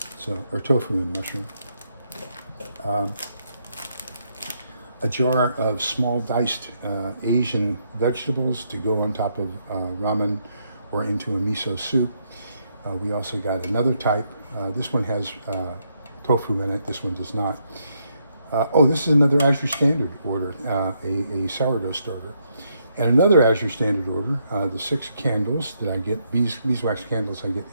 So, or tofu and mushroom. A jar of small diced Asian vegetables to go on top of ramen or into a miso soup. We also got another type. This one has tofu in it. This one does not. This is another Azure Standard order, a sourdough starter. And another Azure Standard order, the 6 candles that I get, beeswax candles I get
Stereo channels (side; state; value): both; inverted; correlation -0.76